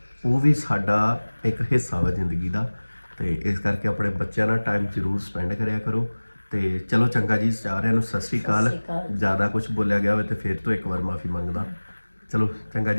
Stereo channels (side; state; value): both; inverted; correlation -1.00